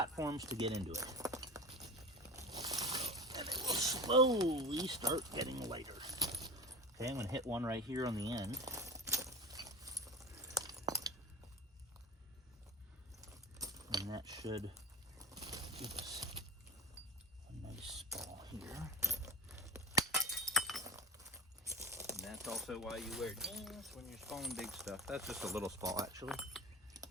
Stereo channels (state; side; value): normal; both; correlation 0.31